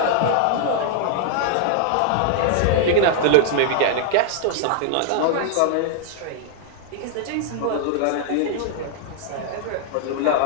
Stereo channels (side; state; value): both; different; correlation 0.00